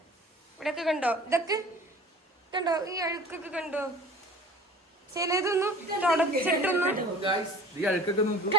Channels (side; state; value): both; normal; correlation 0.45